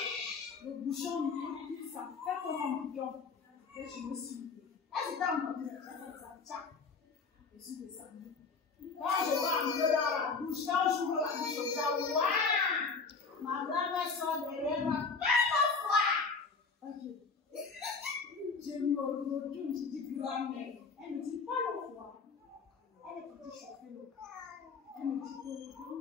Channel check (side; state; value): right; quieter; 4.8 dB